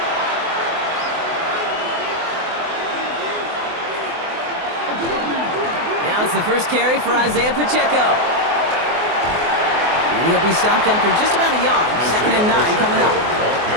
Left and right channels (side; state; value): left; late; 24 ms